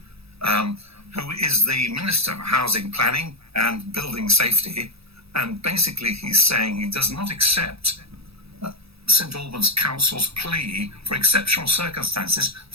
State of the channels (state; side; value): late; left; 0.77 ms